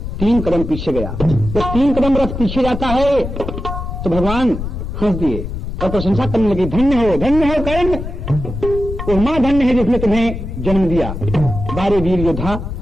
3 कदम पीछे गया। जब 3 कदम रथ पीछे जाता है तो भगवान हंस दिए और प्रशंसा करने लगे, धन्य हो कर्ण, वो मां धन्य है जिसने तुम्हें जन्म दिया, बारे वीर योद्धा।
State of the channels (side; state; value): left; noise; rumble, 6 dB below the sound